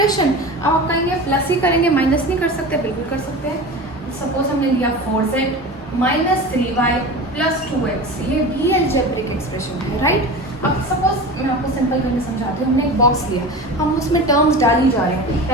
अब आप कहेंगे प्लस ही करेंगे, माइनस नहीं कर सकते. बिल्कुल कर सकते हैं. सपोज हमने लिया 4z -3y + 2x, ये भी अलजेब्रिक एक्सप्रेशन है, राइट. अब सपोज मैं आपको सिंपल करके समझाती हूँ. हमने एक बॉक्स लिया, हम उसमें टर्म्स डाल ही जा रहे हैं.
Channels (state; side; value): normal; both; correlation 0.31